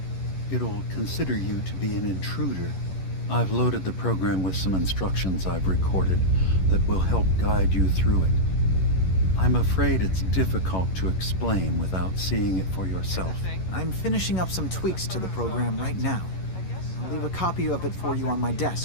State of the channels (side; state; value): right; late; 11 ms